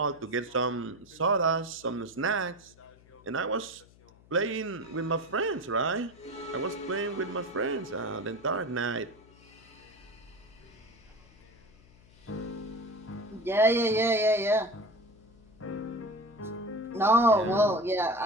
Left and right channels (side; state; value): left; noise; hum, 26 dB below the sound